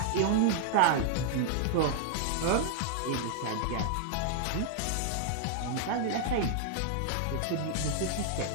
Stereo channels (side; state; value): both; different; correlation 0.00